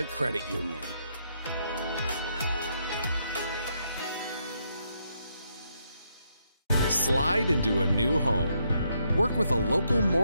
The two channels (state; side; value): inverted; both; correlation -0.77